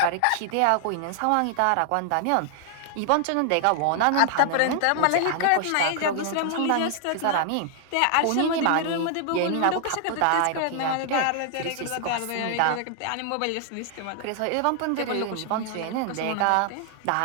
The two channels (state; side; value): different; both; correlation 0.00